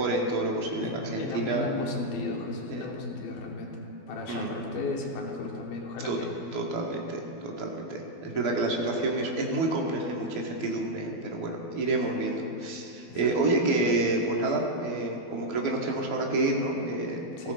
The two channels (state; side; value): late; right; 12 ms